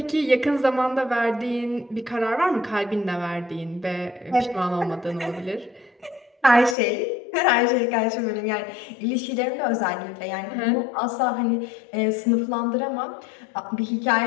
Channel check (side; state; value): right; drops out; at 6.8 s